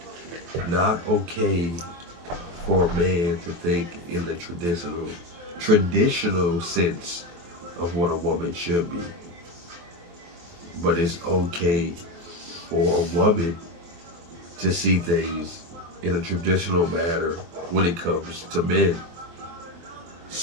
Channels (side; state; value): left; late; 23 ms